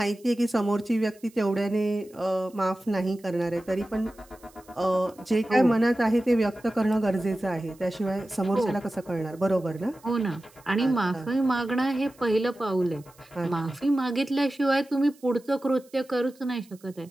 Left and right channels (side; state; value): right; noise; hiss, 28 dB below the sound